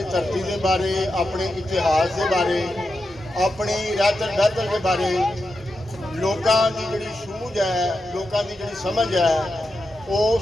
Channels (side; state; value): both; normal; correlation 0.88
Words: धरती के बारे, अपने इतिहास के बारे, अपनी रहतर बहतर के बारे लोगों की जी सूझ है, लोगों की जी समझ है